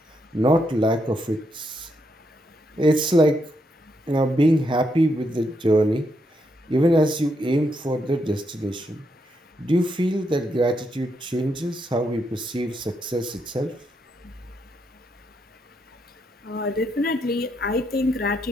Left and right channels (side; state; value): both; normal; correlation 0.79